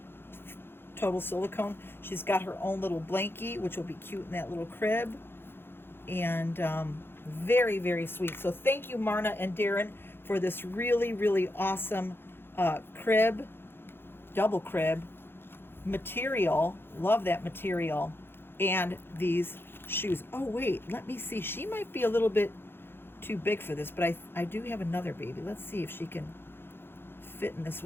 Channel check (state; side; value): late; right; 0.11 ms